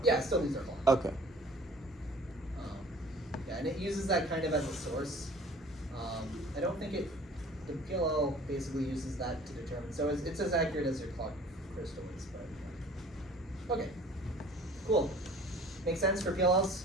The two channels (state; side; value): normal; both; correlation 0.49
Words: Yeah, it still needs our clock. Okay. Yeah, and it uses that kind of as a source. I don't think the PLL basically uses that to determine, so it's as accurate as your clock crystal is, but, okay, cool. Makes sense for PLLs?